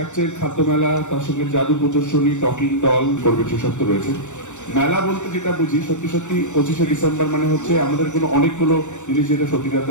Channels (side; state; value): right; late; 0.85 ms